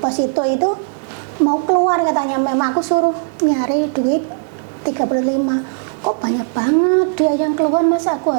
Posito itu mau keluar katanya. Memang aku suruh nyari duit 35 kok banyak banget dia yang keluar, masa aku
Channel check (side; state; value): left; silent; digital silence